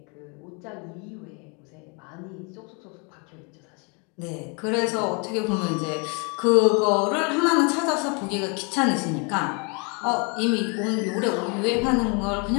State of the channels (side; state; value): right; quieter; 33.9 dB